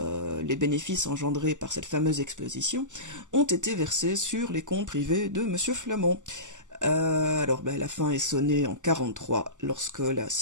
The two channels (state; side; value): late; left; 0.86 ms